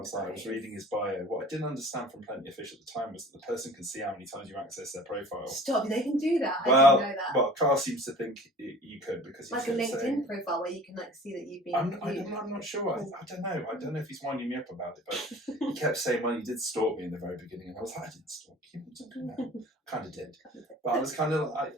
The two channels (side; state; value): both; normal; correlation 0.45